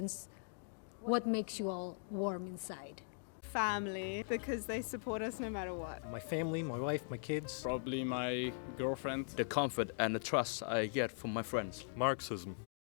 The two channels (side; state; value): right; silent; digital silence